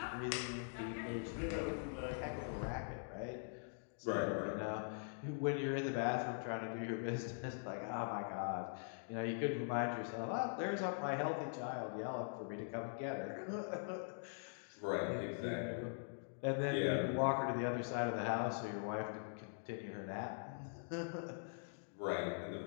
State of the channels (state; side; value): silent; right; digital silence